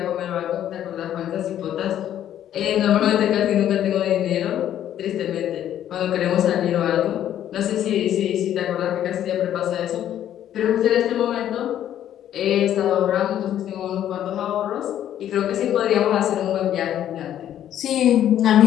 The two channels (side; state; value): right; quieter; 11.1 dB